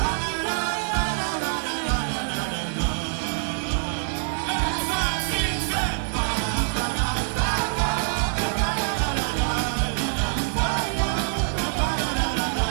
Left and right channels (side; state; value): left; silent; digital silence